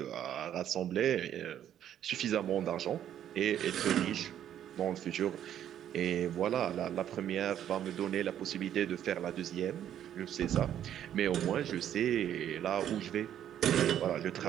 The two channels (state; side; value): quieter; left; 10.5 dB